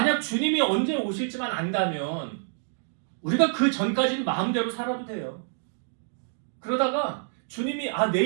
주님이 언제 오실지만 안다면 우리가 그 전까지는 마음대로 살아도 돼요. 그러다가 주님이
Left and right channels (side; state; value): left; silent; digital silence